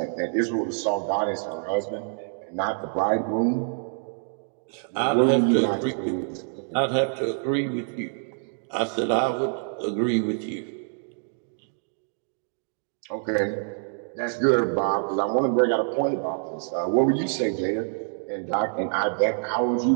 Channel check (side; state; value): left; silent; digital silence